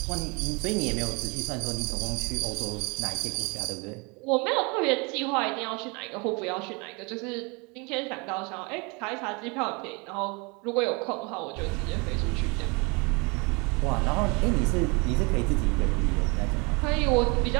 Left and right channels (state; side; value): quieter; left; 29.6 dB